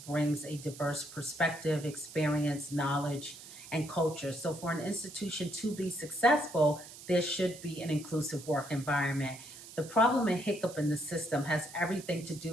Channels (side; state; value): right; noise; hiss, 16 dB below the sound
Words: a diverse perspective, experience, knowledge, and culture. So for an institution to be successful, there should be an inclusive work environment. The problem and hiccup in the system has everything to